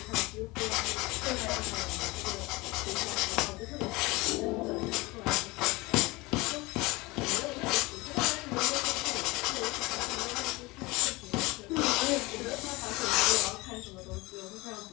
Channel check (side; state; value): right; quieter; 23.1 dB